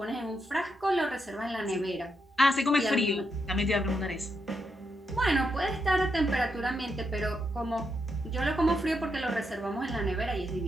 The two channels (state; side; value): normal; both; correlation 0.82